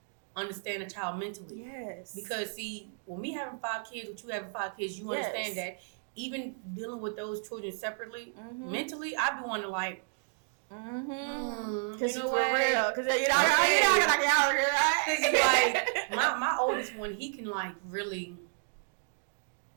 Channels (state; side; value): silent; left; digital silence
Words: understand a child mentally. Yes. Because see, when me having 5 kids, with you having 5 kids, you understand that even dealing with those children separately, mentally, I be wanting to like, because you know for real, because you know, like my oldest one, he can like really